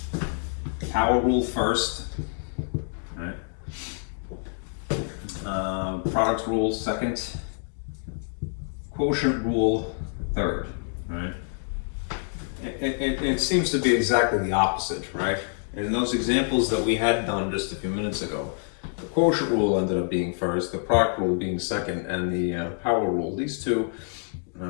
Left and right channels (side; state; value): right; silent; digital silence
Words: power rule first, right? Product rule second, quotient rule third, right? It seems to be exactly the opposite, right? In those examples that we had done just a few minutes ago, the quotient rule ended up being first, the product rule being second, and the power rule, these two,